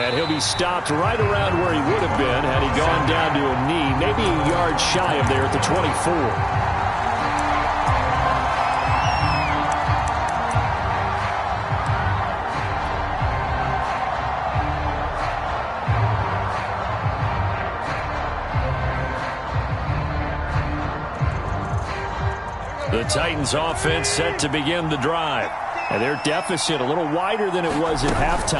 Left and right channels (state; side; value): identical; both; correlation 1.00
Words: And he'll be stopped right around where he would have been had he gone down to a knee, maybe a yard shy of there at the 24. The Titans offense set to begin the drive. And their deficit a little wider than it was at